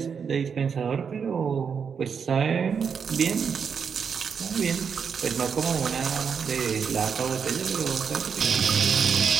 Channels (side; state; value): left; quieter; 6.6 dB